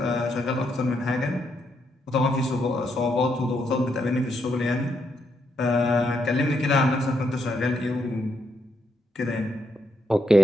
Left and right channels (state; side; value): normal; both; correlation 0.78